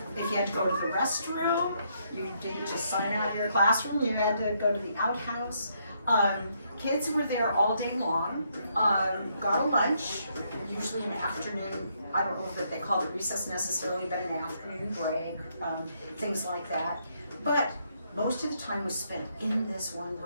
If you had to go to the restroom, you didn't just sign out of your classroom, you had to go to the outhouse. Kids were there all day long, got a lunch, usually an afternoon, I don't know if they called it recess necessarily, but an afternoon break, things like that. But most of the time was spent in this one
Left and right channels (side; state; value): both; inverted; correlation -0.74